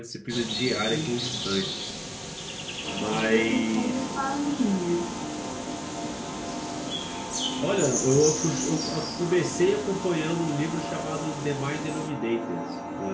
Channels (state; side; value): identical; both; correlation 1.00